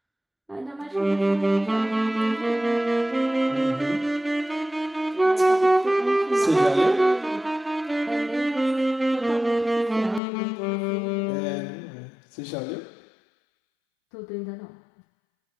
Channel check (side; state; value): right; drops out; at 10.2 s